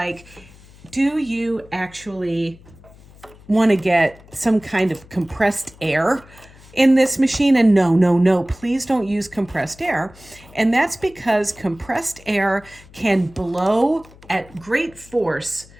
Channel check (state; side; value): noise; left; hum, 23 dB below the sound